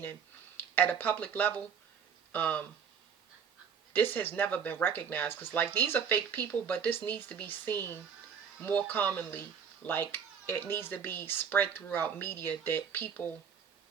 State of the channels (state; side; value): quieter; left; 7.2 dB